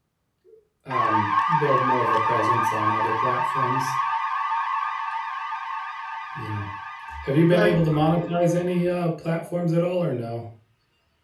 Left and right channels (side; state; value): both; identical; correlation 1.00